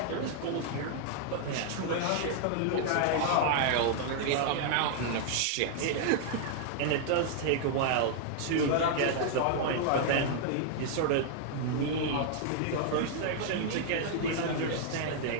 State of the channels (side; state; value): both; different; correlation 0.00